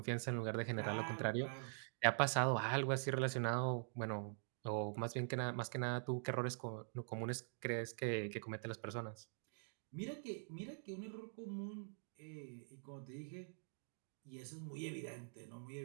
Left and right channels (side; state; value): left; silent; digital silence